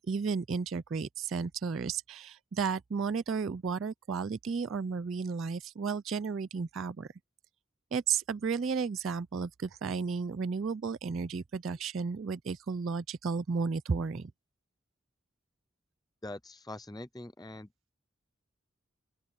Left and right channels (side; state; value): left; quieter; 4.9 dB